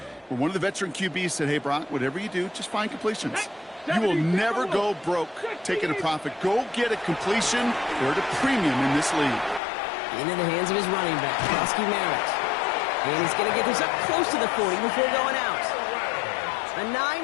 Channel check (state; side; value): drops out; right; at 9.6 s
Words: where one of the veteran QBs said, hey, Brock, whatever you do, just find completions. You will never go broke taking a profit. Go get a completion. They're at a premium in this league. Into the hands of his running back, Koski Merritt. And he's going to get this up close to the 40 before going out. A